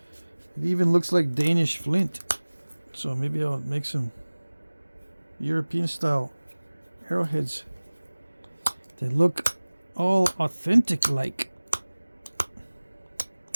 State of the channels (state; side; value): inverted; both; correlation -1.00